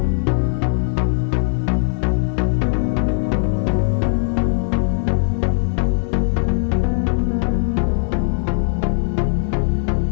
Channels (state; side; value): silent; right; digital silence